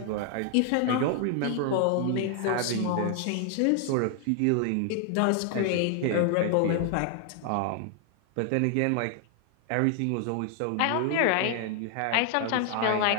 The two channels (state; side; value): different; both; correlation 0.00